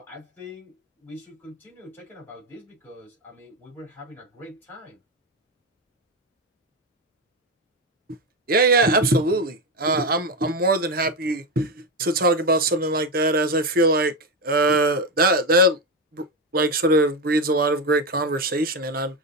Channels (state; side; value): normal; both; correlation 0.13